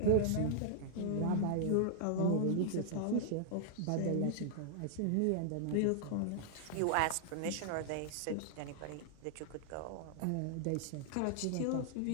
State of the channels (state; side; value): different; both; correlation -0.01